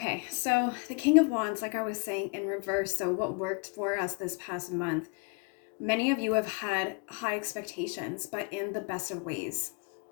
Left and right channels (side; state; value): right; quieter; 31.8 dB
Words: so the King of Wands, like I was saying, in reverse. So what worked for us this past month? Many of you have had high expectations, but in the best of ways.